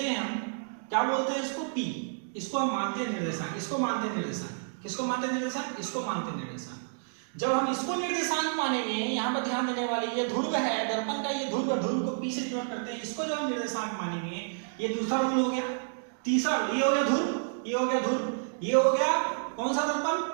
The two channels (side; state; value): left; silent; digital silence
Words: हम, क्या बोलते हैं इसको, P। इसको हम मानते हैं निर्देशांक, इसको मानते हैं निर्देशांक। किसको मानते हैं निर्देशांक, इसको मानते हैं निर्देशांक। जब हम इसको निर्देशांक मानेंगे, यहां पर ध्यान देने वाली, ये ध्रुव है दर्पण का, ये ध्रुव, ध्रुव को P से डिनोट करते हैं। इसको जब हम निर्देशांक मानेंगे, ये दूसरा रूल हो गया। तीसरा रूल, ये हो गया ध्रुव, ये हो गया ध्रुव, ये हो गया कौन सा